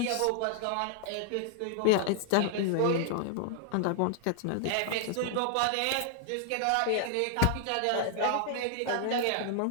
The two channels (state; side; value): different; both; correlation 0.00